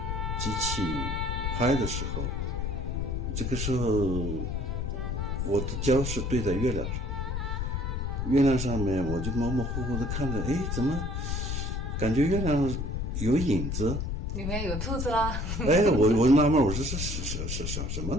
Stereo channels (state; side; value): noise; left; rumble, 2 dB below the sound